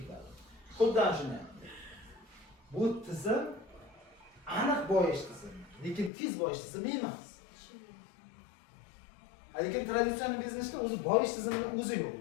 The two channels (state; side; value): drops out; right; at 6.1 s